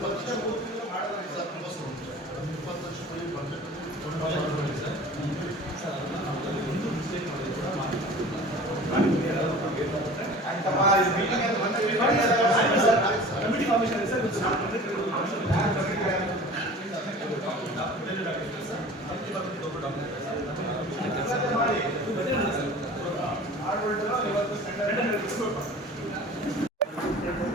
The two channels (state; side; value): normal; both; correlation 0.41